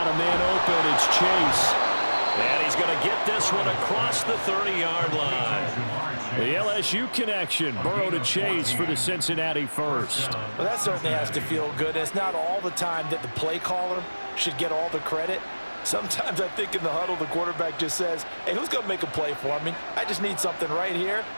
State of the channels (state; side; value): inverted; both; correlation -1.00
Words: a man open. It's Chase. And he's going to get this one across the 30-yard line. The LSU connection. Burrow to Chase for the Cincinnati first. Well, that certainly has to feel good. It's not all the time that the play caller should get all the credit. Sometimes I think in the huddle, the quarterback just says, hey, who's going to make a play for me? I just need something right here.